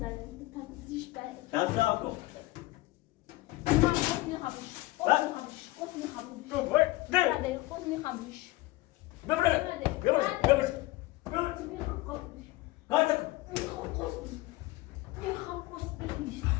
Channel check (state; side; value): quieter; right; 19.3 dB